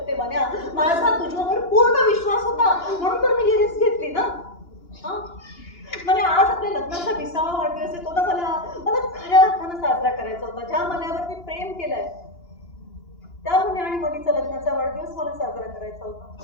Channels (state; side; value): late; right; 2.9 ms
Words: म्हण्या माझा तुझ्यावर पूर्ण विश्वास होता म्हणून तर मी ही रिस्क घेतली ना. म्हणजे आज आपल्या लग्नाचा 20वा वाढदिवस येतो ना. मला खऱ्या अर्थानं साजरा करायचा होता. ज्या मनावर मी प्रेम केलंय त्या मुली आणि मनीचा लग्नाचा वाढदिवस मला साजरा करायचा